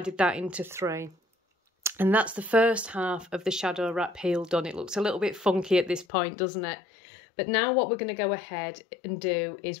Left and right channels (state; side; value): drops out; right; at 6.1 s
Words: that into 3. And that's the first half of the shadow wrap heel done. It looks a little bit funky at this point, doesn't it? But now what we're going to go ahead and do